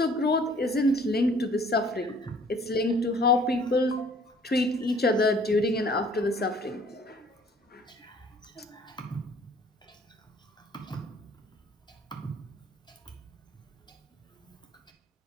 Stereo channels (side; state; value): both; normal; correlation 0.55